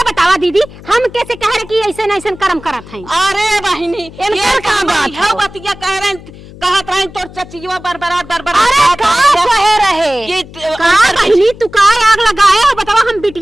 बतावा दीदी हम कैसे कह रहे कि ऐसे न ऐसे कर्म करत हैं। अरे बहिनी इनकर का बात है बतिया कह रहे कहत रहे तोर चचिया बरबरात अरे का कहे रहे का बहिनी तू का आग लगाए हो बतावा हम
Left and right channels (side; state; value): left; noise; hum, 18 dB below the sound